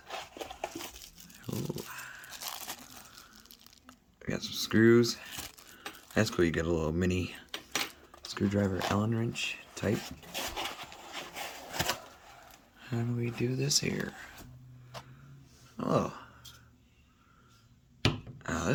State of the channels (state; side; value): identical; both; correlation 1.00